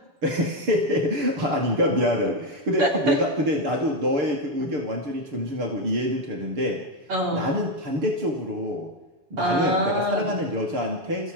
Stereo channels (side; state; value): left; late; 7.1 ms